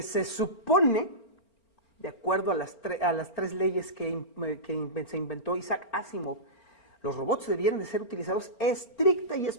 se supone, de acuerdo a las tres leyes que se inventó Isaac Asimov, los robots debieran de ser utilizados estricta y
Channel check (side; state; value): right; late; 4.4 ms